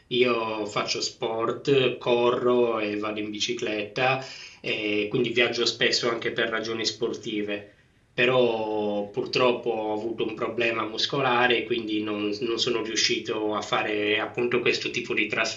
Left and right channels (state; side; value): identical; both; correlation 1.00